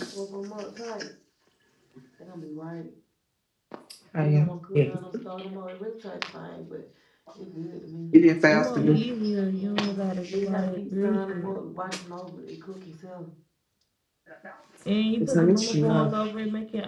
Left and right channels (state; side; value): identical; both; correlation 1.00